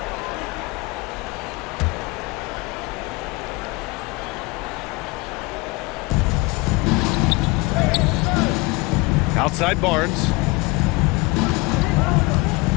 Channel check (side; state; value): right; quieter; 24.6 dB